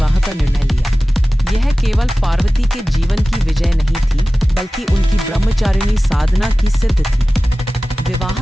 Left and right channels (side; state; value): both; normal; correlation 0.97